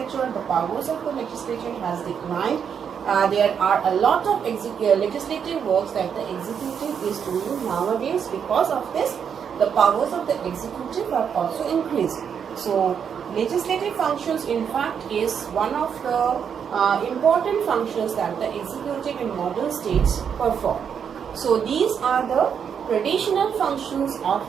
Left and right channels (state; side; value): quieter; left; 7.5 dB